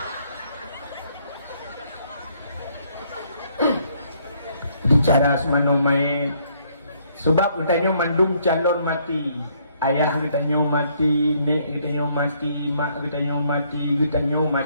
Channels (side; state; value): both; inverted; correlation -0.68